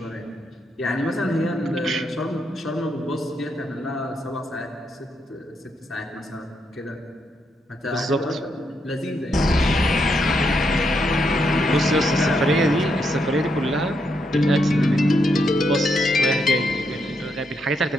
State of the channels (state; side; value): normal; both; correlation 0.79